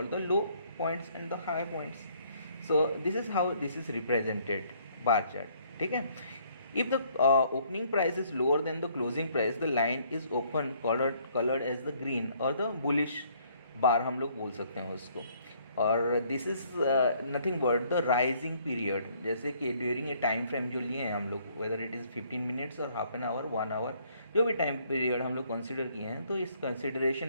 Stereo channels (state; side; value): inverted; both; correlation -0.64